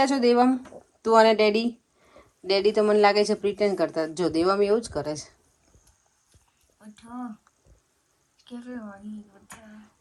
છો. દેવમ, તું અને ડેડી તો મને લાગે છે પ્રિટેન્ડ કરતા. જો દેવમ એવું જ કરે છે.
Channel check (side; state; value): both; identical; correlation 1.00